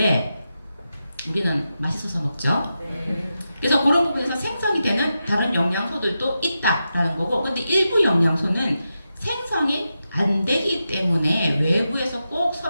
우리는 맛있어서 먹죠. 네. 그래서 그런 부분에서 생성이 되는 다른 영양소들도 있다라는 거고, 근데 일부 영양소는 생성이 안 되기 때문에 외부에서 꼭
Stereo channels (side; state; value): both; inverted; correlation -0.89